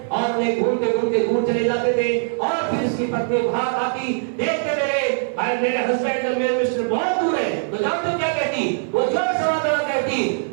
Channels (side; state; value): left; silent; digital silence